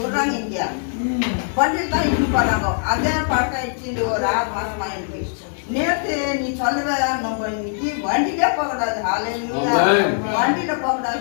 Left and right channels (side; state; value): right; silent; digital silence